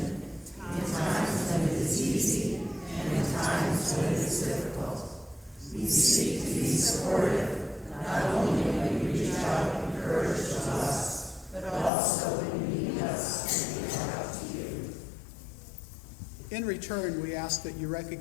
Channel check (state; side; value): drops out; right; at 11.9 s